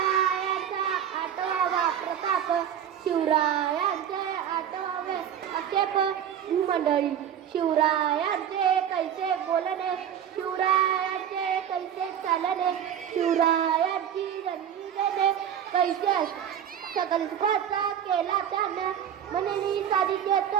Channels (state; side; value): quieter; left; 9.3 dB